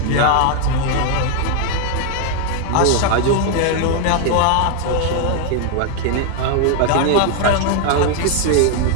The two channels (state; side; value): different; both; correlation 0.00